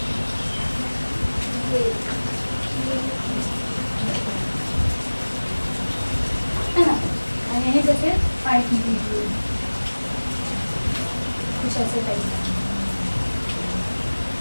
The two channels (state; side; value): inverted; both; correlation -1.00